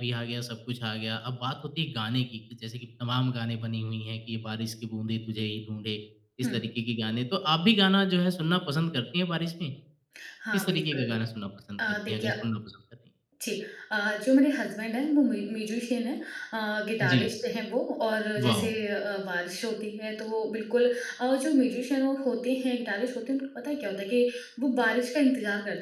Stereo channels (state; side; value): identical; both; correlation 1.00